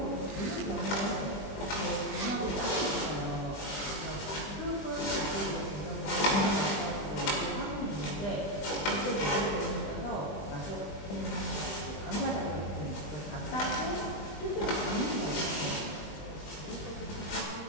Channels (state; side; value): late; right; 20 ms